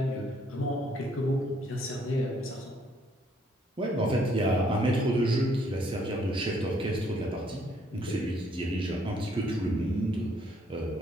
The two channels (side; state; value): both; normal; correlation 0.67